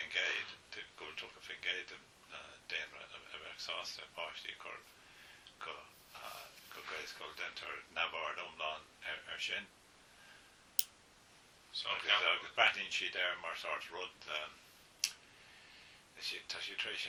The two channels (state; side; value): identical; both; correlation 1.00